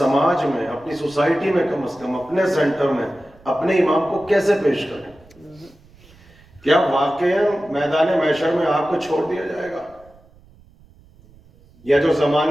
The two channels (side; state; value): right; noise; rumble, 27 dB below the sound